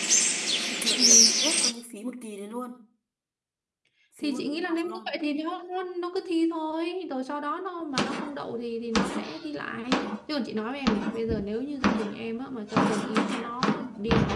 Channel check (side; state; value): both; identical; correlation 1.00